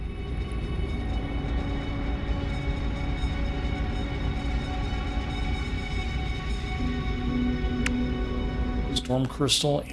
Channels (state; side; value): identical; both; correlation 1.00